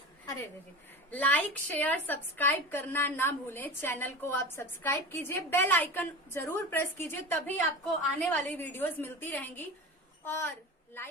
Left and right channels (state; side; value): normal; both; correlation 0.30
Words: अरे लाइक, शेयर, सब्सक्राइब करना ना भूलें। चैनल को आप सब्सक्राइब कीजिए, बेल आइकन जरूर प्रेस कीजिए, तभी आपको आने वाली वीडियोस मिलती रहेंगी। और